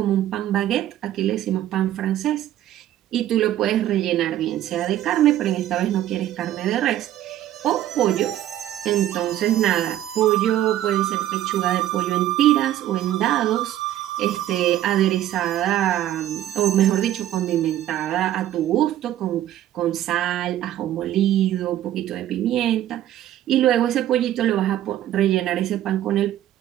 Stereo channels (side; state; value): left; quieter; 12.6 dB